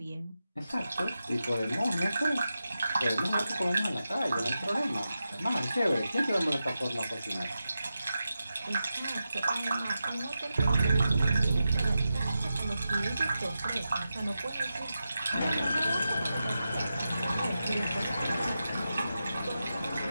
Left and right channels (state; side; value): inverted; both; correlation -0.90